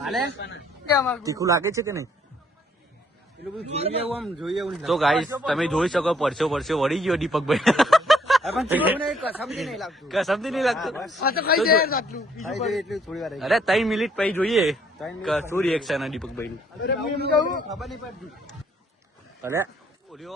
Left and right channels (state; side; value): normal; both; correlation 0.65